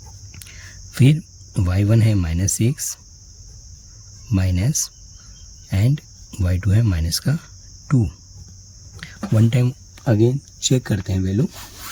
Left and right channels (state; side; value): identical; both; correlation 1.00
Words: फिर y1 है -6 माइनस एंड y2 है माइनस का 2. वन टाइम अगेन चेक करते हैं वैल्यू.